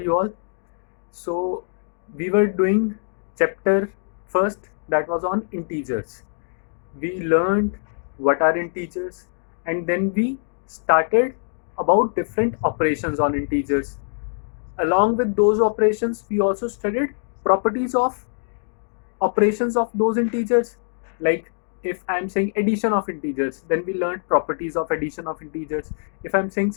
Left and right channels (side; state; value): right; silent; digital silence